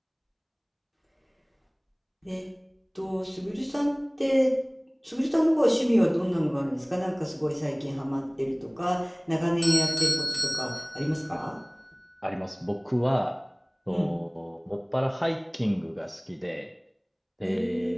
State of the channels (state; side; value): identical; both; correlation 1.00